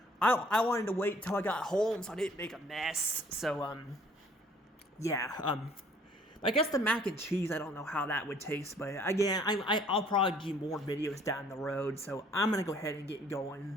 I wanted to wait until I got home so I didn't make a mess, so, yeah, I guess the mac and cheese, I don't know how that would taste, but again, I'll probably do more videos down the road, so I'm going to go ahead and get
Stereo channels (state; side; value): normal; both; correlation 0.58